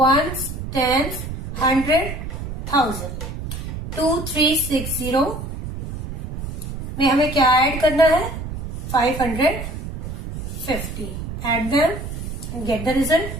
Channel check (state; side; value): noise; right; rumble, 7 dB below the sound